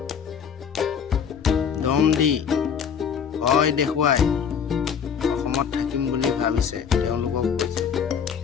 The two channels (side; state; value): right; quieter; 7.2 dB